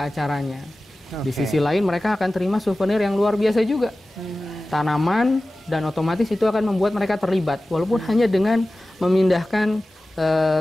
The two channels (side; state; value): both; normal; correlation 0.96